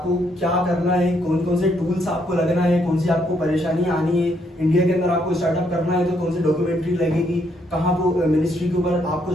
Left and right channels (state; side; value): normal; both; correlation 0.73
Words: क्या करना है, कौन कौन से टूल्स आपको लगना है, कौन सी आपको परेशानियां आनी है, इंडिया के अंदर आपको स्टार्टअप करना है तो कौन सी डॉक्यूमेंट्री लगेगी, कहाँ वो मिनिस्ट्री के ऊपर आपको